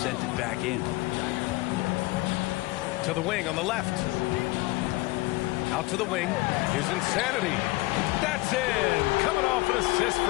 sent it back in. To the wing on the left. Out to the wing. Here's Insanity. That's in. Coming off an assist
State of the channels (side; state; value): right; quieter; 21.3 dB